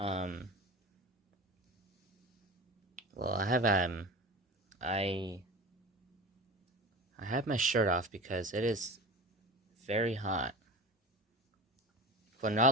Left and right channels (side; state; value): both; normal; correlation 0.32